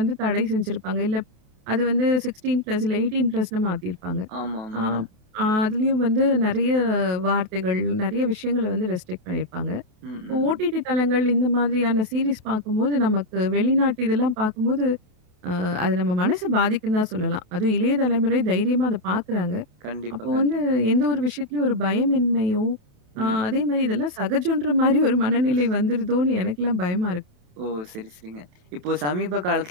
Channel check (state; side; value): late; left; 28 ms